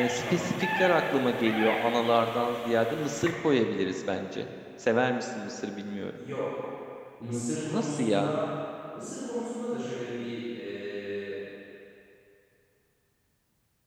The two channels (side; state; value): both; identical; correlation 1.00